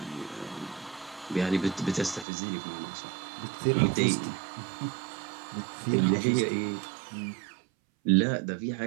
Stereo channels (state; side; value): drops out; left; at 2.2 s